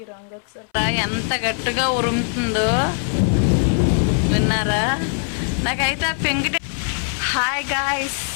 రంగు వచ్చారు. ఎంత గట్టిగా ఉరుముతుందో విన్నారా? నాకైతే ఆ పెంకిటి. హాయ్ గాయ్స్,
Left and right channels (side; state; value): right; silent; 61 dB below the other